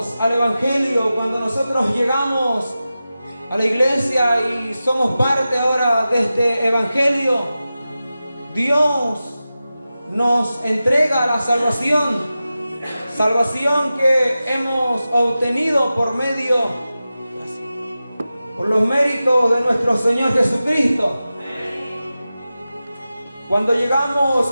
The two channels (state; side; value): inverted; both; correlation -0.94